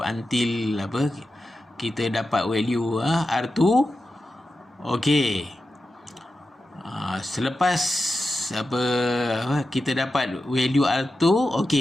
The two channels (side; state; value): both; normal; correlation 0.91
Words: until apa? Kita dapat value R2. Okey. Selepas apa kita dapat value R2,